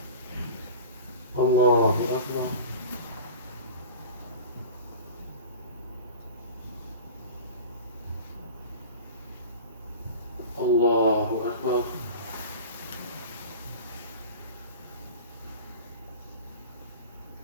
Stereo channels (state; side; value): inverted; both; correlation -0.36